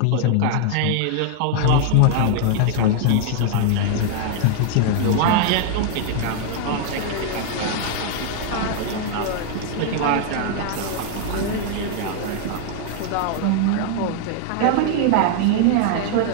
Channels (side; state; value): both; different; correlation 0.00